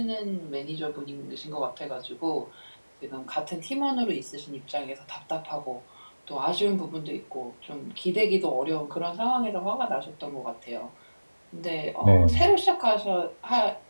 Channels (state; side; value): inverted; both; correlation -1.00